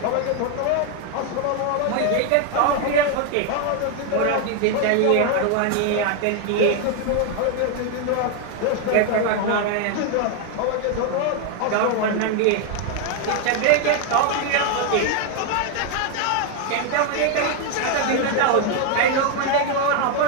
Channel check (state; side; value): different; both; correlation 0.01